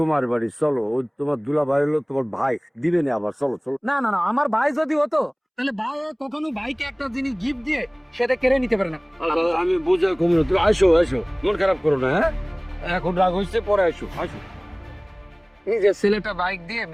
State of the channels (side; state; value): both; identical; correlation 1.00